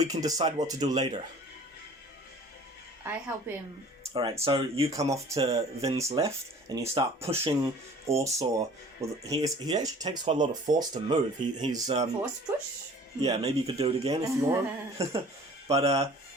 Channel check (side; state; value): both; normal; correlation 0.48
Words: can decide what to do later. I help him. Alright, so you come off to Vyn's left, and you start pushing Orsaw. Well, he actually takes quite a lot of force to move. He's Force push? Yeah, maybe you could do it again if you want. But,